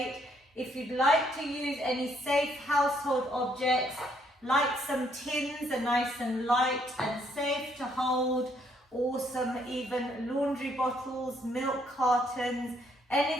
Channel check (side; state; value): both; normal; correlation 0.70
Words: If you'd like to use any safe household objects, like some tins are nice and light and safe to hold, or some even laundry bottles, milk cartons,